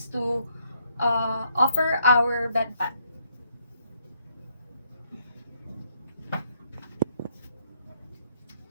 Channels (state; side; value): inverted; both; correlation -0.72